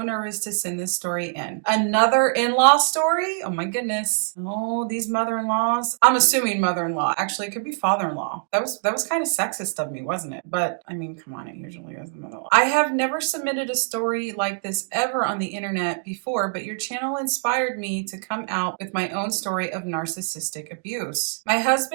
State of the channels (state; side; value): silent; left; digital silence